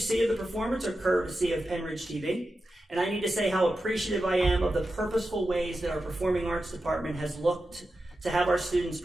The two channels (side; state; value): both; normal; correlation 0.91